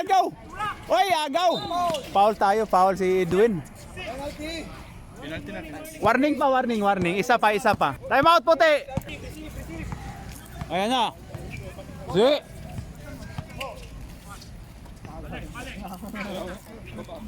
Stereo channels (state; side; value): identical; both; correlation 1.00